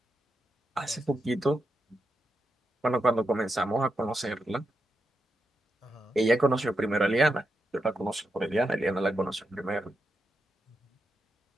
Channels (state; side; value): normal; both; correlation 0.86